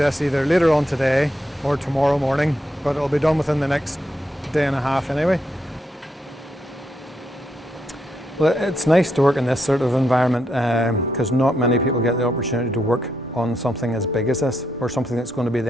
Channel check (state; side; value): normal; both; correlation 0.80